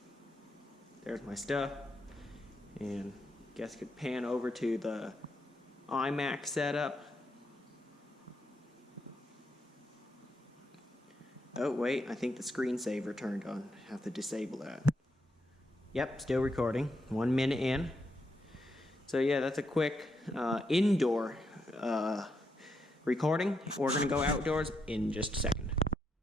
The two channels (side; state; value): both; normal; correlation 0.81